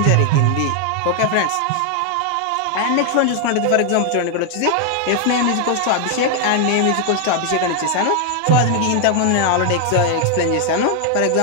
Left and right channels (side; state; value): both; different; correlation 0.00